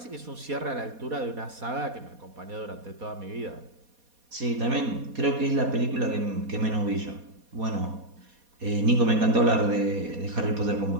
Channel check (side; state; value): left; late; 4.2 ms